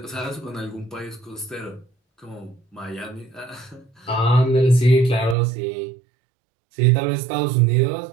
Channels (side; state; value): left; drops out; at 5.4 s